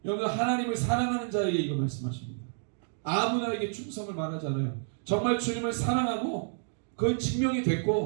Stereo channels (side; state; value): left; silent; digital silence